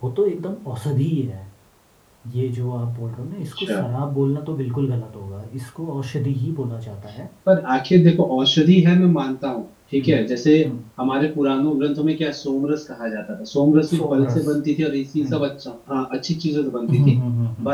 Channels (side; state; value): both; identical; correlation 1.00